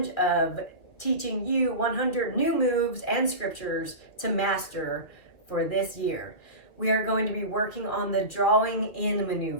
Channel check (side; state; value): right; late; 2.6 ms